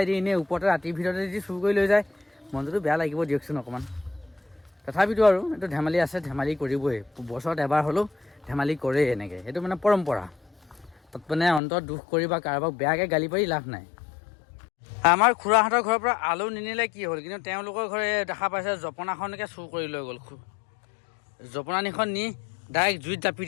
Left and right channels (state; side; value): drops out; right; at 11.6 s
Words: দি এনেই ওপৰতে ৰাতিৰ ভিতৰতে যদি চুৰ কৰি লৈ যায়, মনটোতো বেয়া লাগিব দিয়কচোন অকণমান। তথাপিতো আৰু এইটো ধেমালি আছে, ধেমালি কৰিবই। বছৰত এবাৰ হ'লেও ধেমালি কৰেই এনেকৈ, সেইটো মানে পৰম্পৰা। তাত মানে অন্তৰত দুখ কৰি বা কাৰোবাক বেয়াকৈ গালি পাৰি লাভ নাই। আমাৰ খুৰাহঁতৰ ঘৰৰ পৰা আলু নিনিলে কি হ'ল, কিন্তু তেওঁলোকৰ ঘৰে দেখা পাইছে জপনাখনকে চুৰ কৰি লৈ গ'ল। জপনানিখন নি ডাইৰেক্ট জুইত জাপি